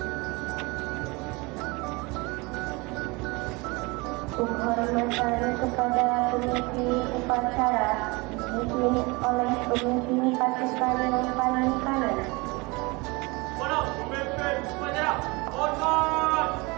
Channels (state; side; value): quieter; left; 25.9 dB